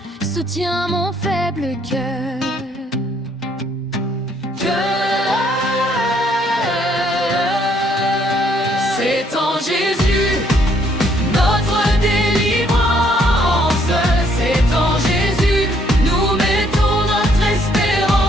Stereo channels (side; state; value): both; normal; correlation 0.67